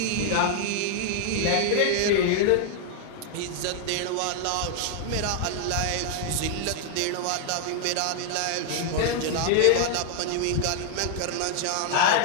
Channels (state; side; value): different; both; correlation 0.00